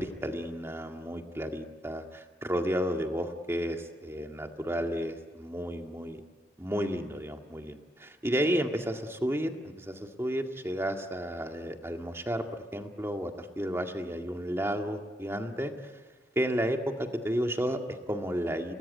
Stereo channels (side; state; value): both; normal; correlation 0.79